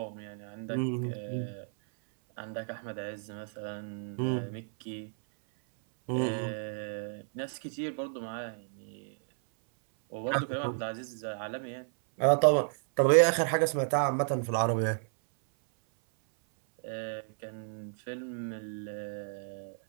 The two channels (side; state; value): left; silent; 56 dB below the other